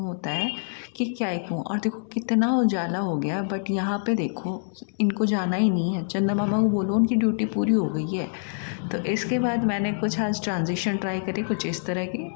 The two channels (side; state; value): right; silent; 61 dB below the other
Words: है कि क्या ही कहूँ। और देखो कितना उजाला हो गया, बट यहाँ पे देखो इनको जाना ही नहीं है। चंदा मामा को बोलो, उनकी ड्यूटी पूरी हो गई है। तो इसके बाद मैंने कुछ आज ट्रांजिशन ट्राई करी कुछ इस तरह की।